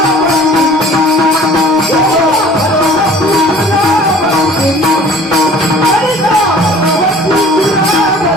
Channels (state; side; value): normal; both; correlation 0.49